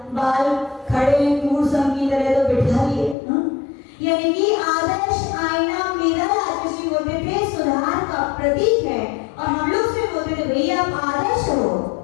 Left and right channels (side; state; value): right; drops out; at 3.2 s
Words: बाल खड़े मूर्सम की तरह तो बिठा लिए। यानी कि आदर्श आईना, मिरर आदर्श बोलते थे सुधार का प्रतीक है। और हम लोग से बोलते थे भैया आप आदर्श हो,